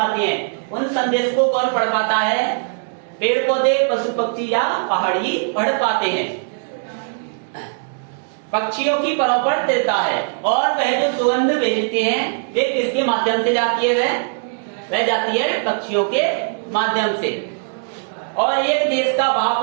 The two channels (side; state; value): left; silent; digital silence